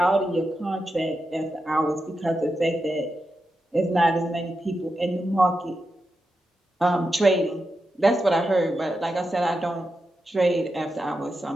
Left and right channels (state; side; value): normal; both; correlation 0.88